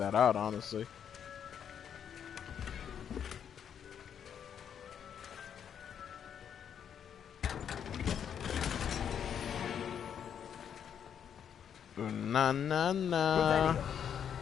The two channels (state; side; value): quieter; right; 8.4 dB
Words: out, honestly. Na na na.